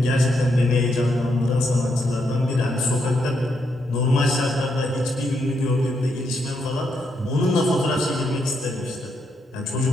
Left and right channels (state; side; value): normal; both; correlation 0.79